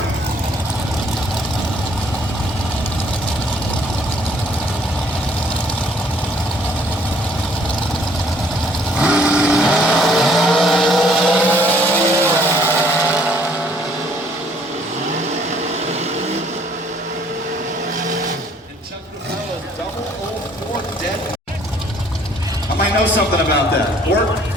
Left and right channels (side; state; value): both; normal; correlation 0.62